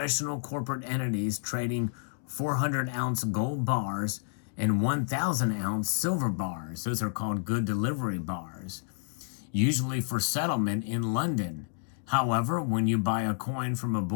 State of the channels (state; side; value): silent; right; digital silence